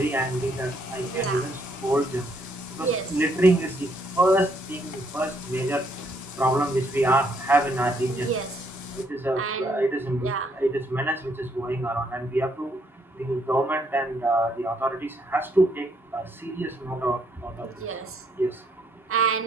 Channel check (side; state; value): both; normal; correlation 0.71